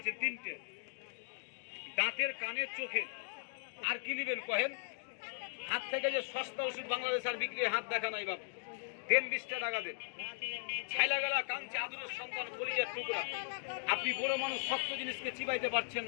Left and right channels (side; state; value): right; silent; digital silence